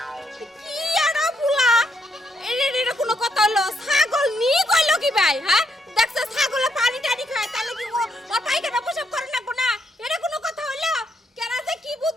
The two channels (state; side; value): normal; both; correlation 0.76